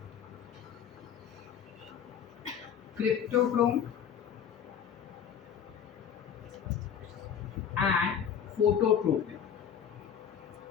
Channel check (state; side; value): quieter; right; 8.2 dB